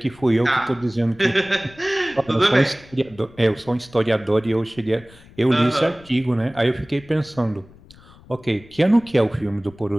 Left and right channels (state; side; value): noise; left; rumble, 23 dB below the sound